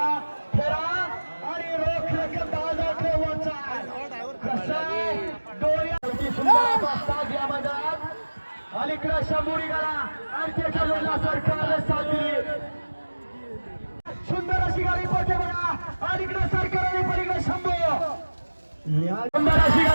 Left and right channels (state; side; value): inverted; both; correlation -1.00